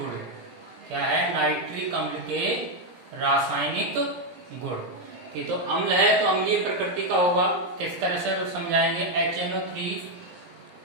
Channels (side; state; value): left; late; 17 ms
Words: क्या है? नाइट्रिक अम्ल के रासायनिक गुण। कि तो अम्ल है तो अम्लीय प्रकृति का होगा। किस तरह से तो समझाएंगे। HNO3